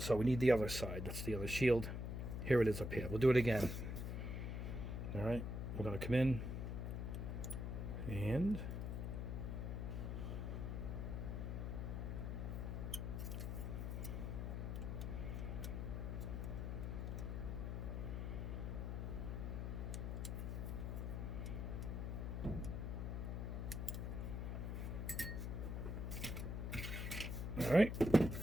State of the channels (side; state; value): left; noise; hum, 2 dB below the sound